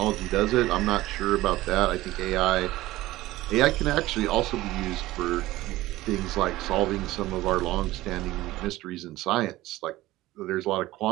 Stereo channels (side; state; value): left; quieter; 17.2 dB